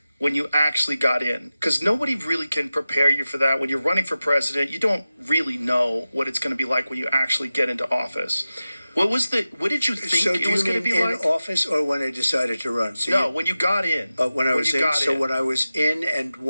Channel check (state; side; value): inverted; both; correlation -0.94